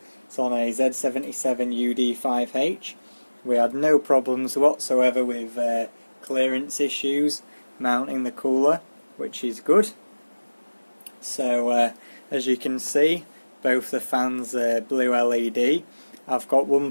It's on a Z77 UD5H. We had no problems whatsoever with clearance issues mounting the cooler, which is good. So as you can see, both the fans are blue LED. I've got one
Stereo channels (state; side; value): inverted; both; correlation -1.00